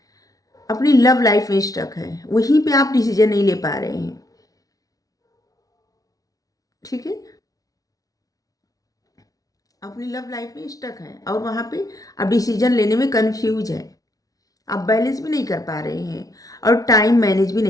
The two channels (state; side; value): late; right; 0.18 ms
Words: अपनी लव लाइफ में स्टक है, वहीं पे आप डिसीजन नहीं ले पा रहे हैं। ठीक है। अपनी लव लाइफ में स्टक है और वहाँ पे आप डिसीजन लेने में कंफ्यूज है, आप बैलेंस भी नहीं कर पा रहे हैं और टाइम मैनेज भी